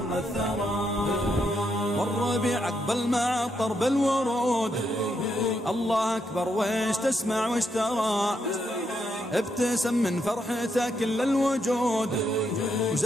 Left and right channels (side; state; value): both; normal; correlation 0.79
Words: الثرى والربيع عقبل مع طرب الورود. الله أكبر ويش تسمع ويش ترى ابتسم من فرحته كل الوجود